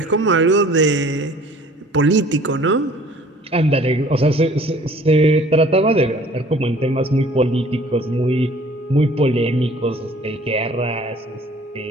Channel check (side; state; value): both; normal; correlation 0.52